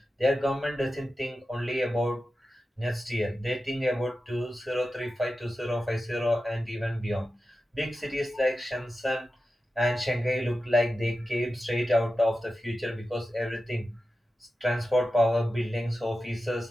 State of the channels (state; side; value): normal; both; correlation 0.92